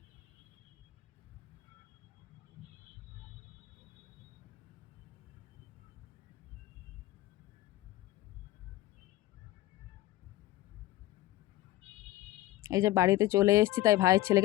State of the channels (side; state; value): right; quieter; 16.1 dB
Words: এই যে বাড়িতে চলে এসেছি, তাই ভাইয়ের